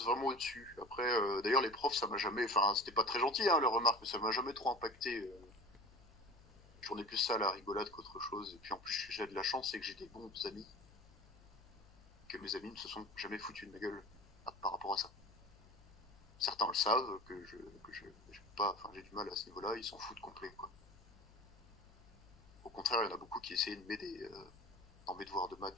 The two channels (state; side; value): noise; left; hum, 24 dB below the sound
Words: vraiment au-dessus. Après, d'ailleurs, les profs, ça m'a jamais. Enfin, c'était pas très gentil, hein, leurs remarques, mais ça m'a jamais trop impacté. J'en ai plus ça à la rigolade qu'autre chose. Et puis en plus, j'ai de la chance, c'est que j'ai des bons amis. Que mes amis ne se sont jamais foutus de ma gueule par rapport à ça. Certains le savent, j'ai pas. Enfin, j'ai du mal à ce niveau-là, ils s'en foutent complet, quoi. Au contraire, il y en a beaucoup qui essayaient de m'aider dans mes devoirs de